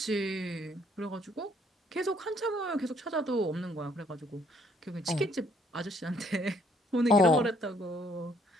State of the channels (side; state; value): both; normal; correlation 0.65